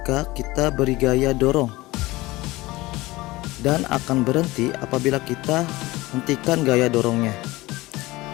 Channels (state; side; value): quieter; right; 20.0 dB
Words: kita beri gaya dorong, dan akan berhenti apabila kita hentikan gaya dorongnya.